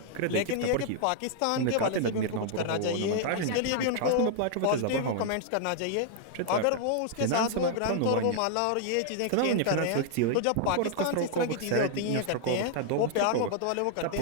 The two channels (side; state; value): both; different; correlation -0.01